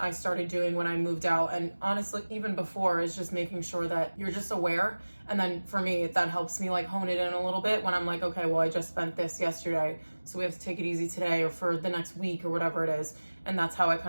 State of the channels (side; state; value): both; inverted; correlation -1.00